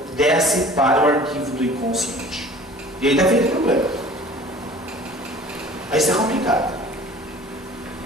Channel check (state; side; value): normal; both; correlation 0.46